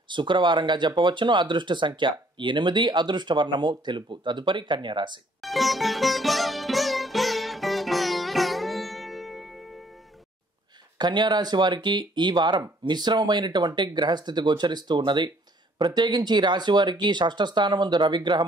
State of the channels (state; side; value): normal; both; correlation 0.62